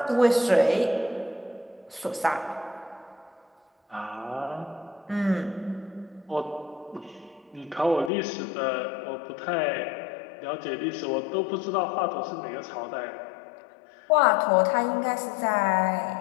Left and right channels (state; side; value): drops out; right; at 8.1 s